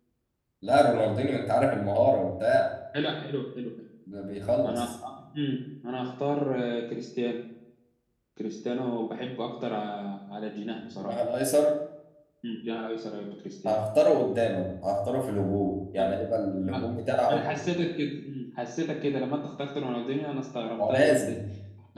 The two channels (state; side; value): identical; both; correlation 1.00